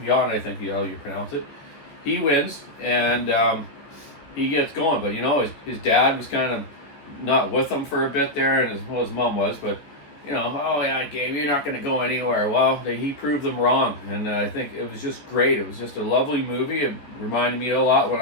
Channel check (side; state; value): right; late; 14 ms